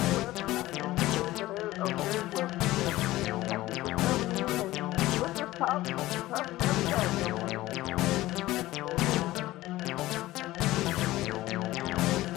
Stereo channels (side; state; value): right; quieter; 17.0 dB